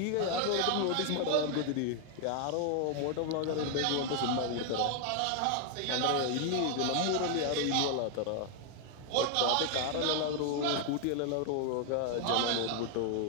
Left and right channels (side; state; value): both; different; correlation 0.00